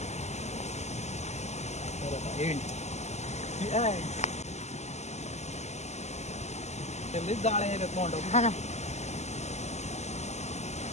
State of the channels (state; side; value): late; right; 0.33 ms